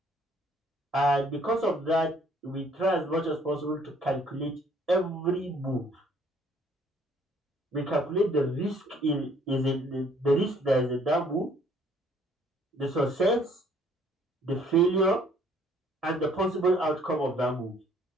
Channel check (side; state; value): both; normal; correlation 0.61